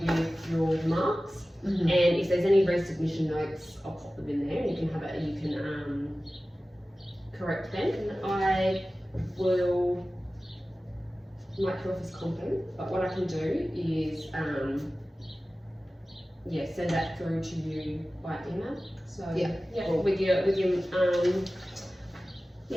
with your marks. And if there's any resubmission notes, I'll pop them in there, and you can correct them. And I will mark you off as competent, but what I can do is send that through to you by email. So with your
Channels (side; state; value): both; normal; correlation 0.96